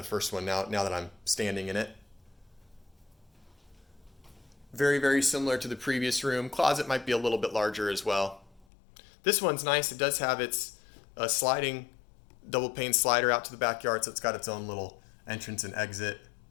first one, now that I'm standing in it. Very, very similar to the previous room. Closet might be a little bit larger as well. This one's nice. It does have its sliding double pane slider out to the backyard, so it's got its own little entrance and exit,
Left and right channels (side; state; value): right; drops out; at 8.7 s